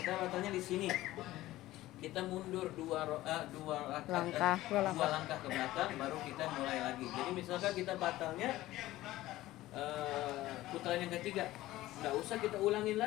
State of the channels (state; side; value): quieter; right; 16.3 dB